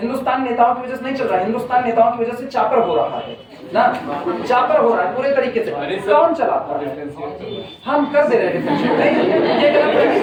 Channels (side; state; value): both; identical; correlation 1.00